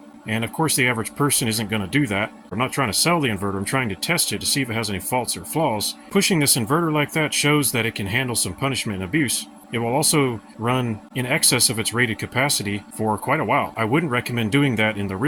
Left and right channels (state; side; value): identical; both; correlation 1.00